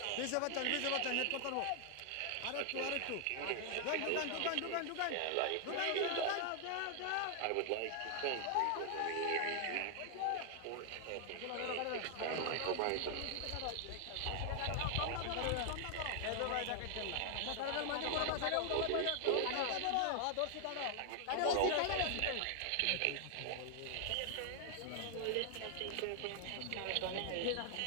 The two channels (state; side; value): different; both; correlation 0.00